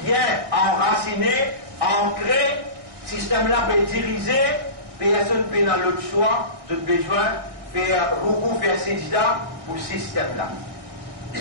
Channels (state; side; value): late; left; 1.6 ms